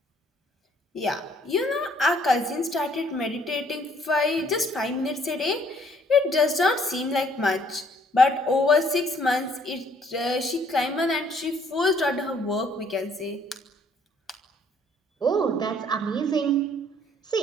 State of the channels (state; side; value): normal; both; correlation 0.63